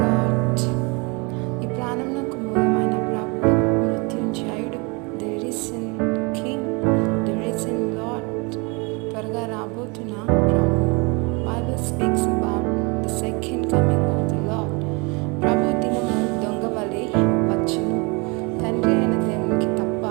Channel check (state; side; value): quieter; left; 29.6 dB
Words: ఈ ప్రాణమునకు మూలమైన ప్రభు, మృత్యుంజయుడు, ది రిసన్ కింగ్, ది రిసన్ లార్డ్, త్వరగా రాబోతున్న ప్రభు. Bible speaks about the second coming